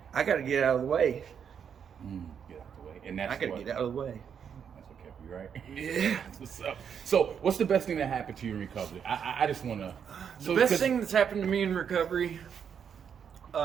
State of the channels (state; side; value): quieter; left; 7.6 dB